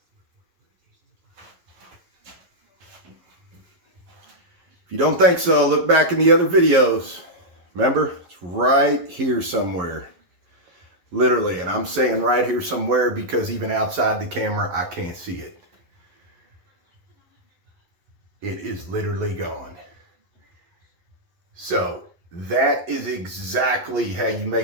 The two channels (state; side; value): late; left; 11 ms